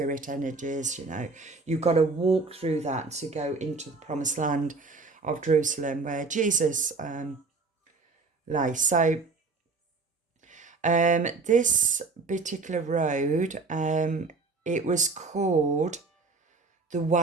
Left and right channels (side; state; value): left; quieter; 4.1 dB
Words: energies, you know. You've got to walk through that to go into the promised land of Jerusalem where Jesus lay. So this particular road, it was called the